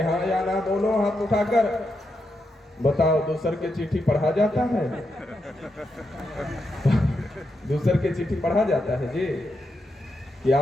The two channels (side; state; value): both; normal; correlation 0.85